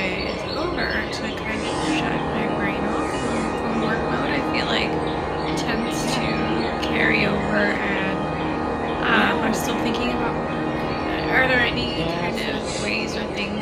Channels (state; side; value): identical; both; correlation 1.00